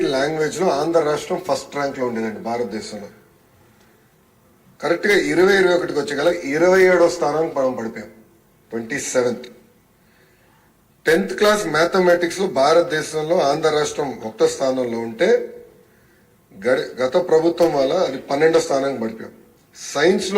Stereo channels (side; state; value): both; identical; correlation 1.00